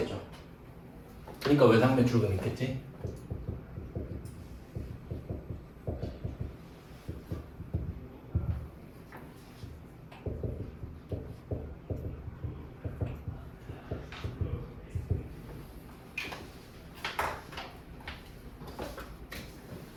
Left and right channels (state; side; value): identical; both; correlation 1.00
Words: 그러니까 외상매출금 있겠지?